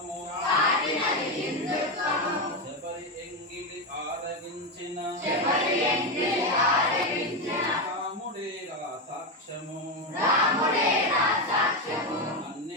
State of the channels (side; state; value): both; normal; correlation 0.11